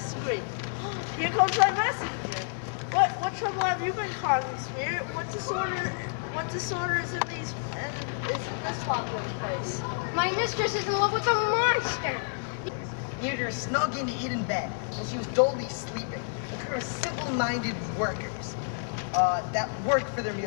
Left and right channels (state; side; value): silent; right; 58 dB below the other